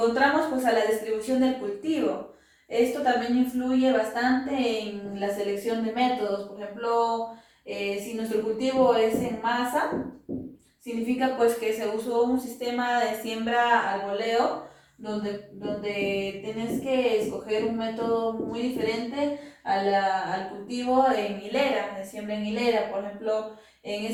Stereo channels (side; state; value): both; identical; correlation 1.00